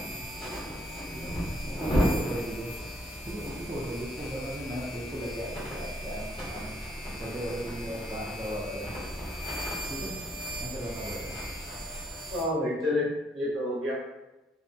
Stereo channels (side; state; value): both; normal; correlation 0.69